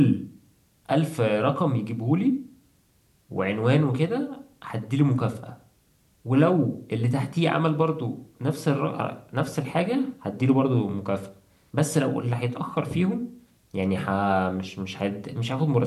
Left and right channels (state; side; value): identical; both; correlation 1.00